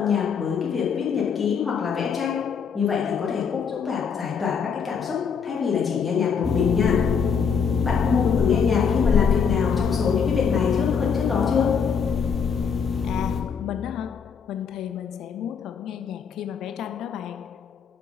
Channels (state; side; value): quieter; right; 6.4 dB